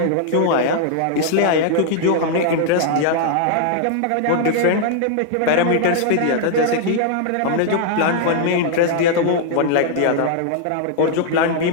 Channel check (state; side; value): different; both; correlation -0.01